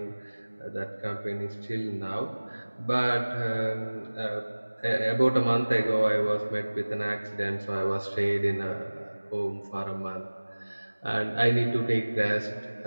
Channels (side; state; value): both; inverted; correlation -1.00